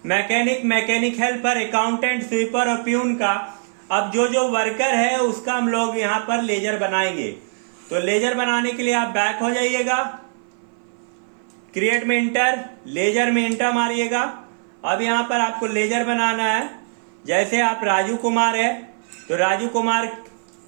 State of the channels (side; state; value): left; silent; 58 dB below the other